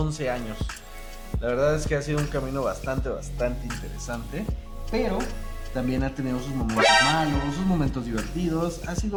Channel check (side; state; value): both; identical; correlation 1.00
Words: años. La verdad es que ha sido un camino bastante interesante, pero también ha tenido sus momentos malos, sus momentos divertidos. Ha